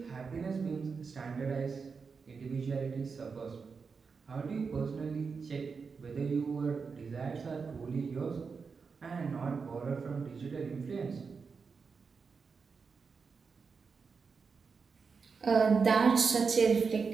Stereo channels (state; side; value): quieter; left; 5.2 dB